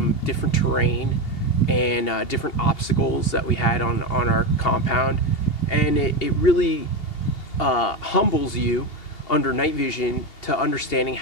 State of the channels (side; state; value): right; late; 2.8 ms